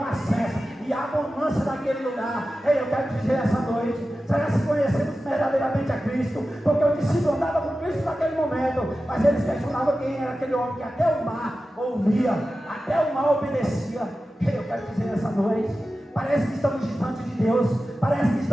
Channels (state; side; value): normal; both; correlation 0.94